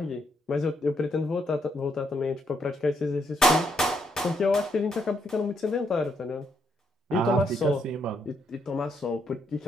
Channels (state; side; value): normal; both; correlation 0.75